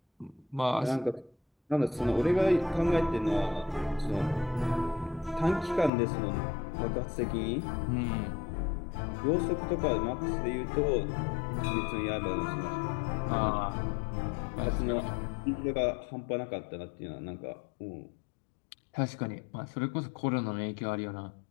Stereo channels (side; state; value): right; drops out; at 5.9 s